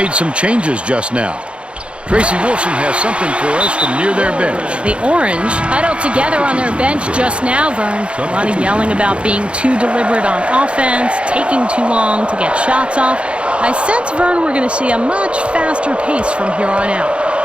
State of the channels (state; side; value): late; left; 0.058 ms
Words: some changes just now. Tracy Wilson has something for us from near their bench. The Orange huddled together on their bench just now, Vern. A lot of yelling about being too deliberate on offense, taking too long to get shots off. I sense, Vern, we're going to see a much faster pace from here on out.